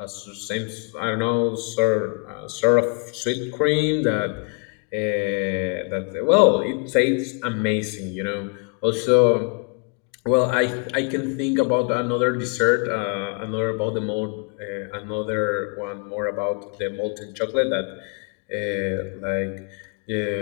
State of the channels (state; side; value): quieter; right; 35.5 dB